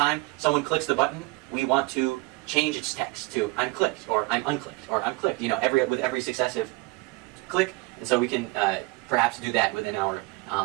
someone clicks the button, we want to change its text to I'm clicked, or I'm unclicked, or I'm clicked, with every successive click. And so we can perhaps do that within our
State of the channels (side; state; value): left; quieter; 24.7 dB